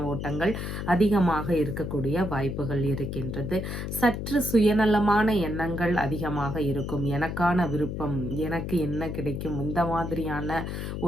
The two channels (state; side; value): noise; left; hum, 5 dB below the sound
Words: ஓட்டங்கள் அதிகமாக இருக்கக்கூடிய வாய்ப்புகள் இருக்கின்றது. சற்று சுயநலமான எண்ணங்கள் அதிகமாக இருக்கும். எனக்கான விருப்பம், எனக்கு என்ன கிடைக்கும், இந்த மாதிரியான